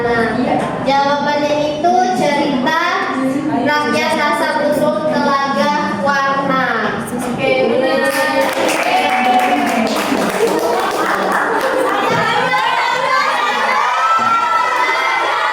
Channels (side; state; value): both; identical; correlation 1.00